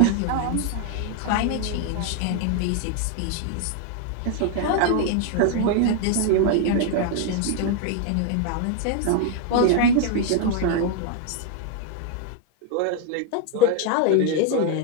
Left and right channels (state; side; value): different; both; correlation 0.00